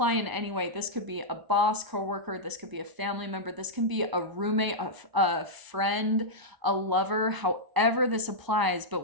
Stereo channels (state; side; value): late; left; 1.0 ms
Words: in any way. This could be a boss, coworker, this could be a family member, this can be a roommate, a friend, a lover, however this applies. But